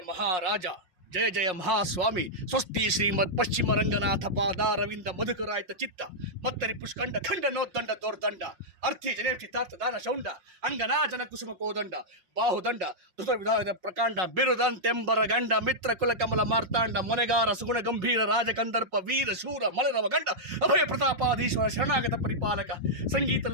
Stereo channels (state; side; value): late; left; 5.5 ms